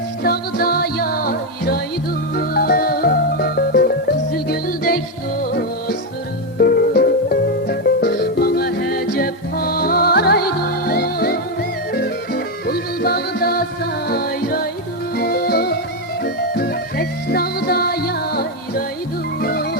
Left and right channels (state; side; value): normal; both; correlation 0.06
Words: dağda yayraydı. Kızıl güldek dostlarım bana hece paraydı. Bulbul bağda sayraydı, tek dağda yayraydı.